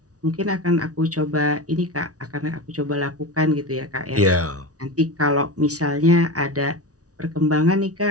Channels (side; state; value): left; late; 0.67 ms